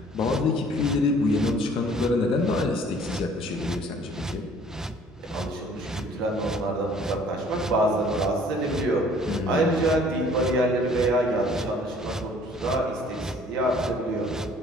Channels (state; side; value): normal; both; correlation 0.55